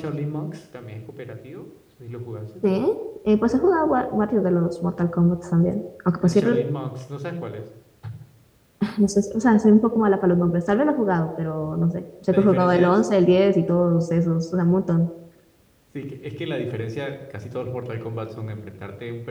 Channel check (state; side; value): identical; both; correlation 1.00